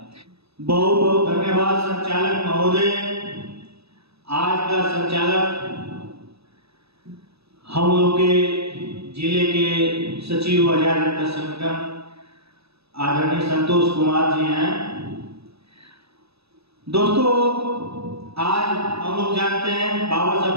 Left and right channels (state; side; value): late; left; 0.78 ms